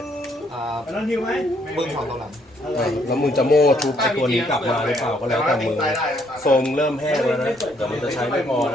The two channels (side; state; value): both; normal; correlation 0.69